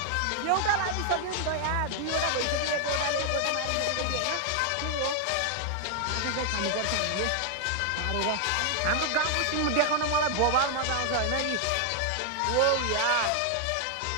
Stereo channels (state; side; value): different; both; correlation 0.00